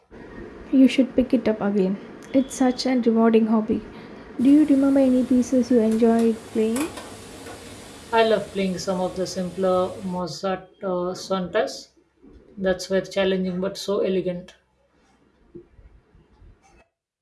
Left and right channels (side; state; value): both; identical; correlation 1.00